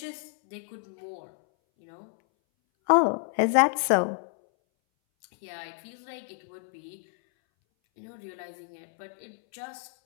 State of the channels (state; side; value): silent; right; 58 dB below the other